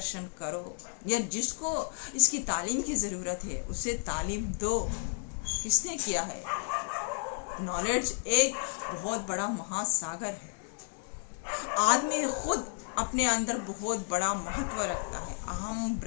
करो, या जिसको इसकी तालीम की ज़रूरत है उसे तालीम दो। किसने किया है? नॉलेज एक बहुत बड़ा महासागर है। आदमी खुद अपने अंदर बहुत बड़ा महत्व रखता है। अहम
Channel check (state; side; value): silent; right; 56 dB below the other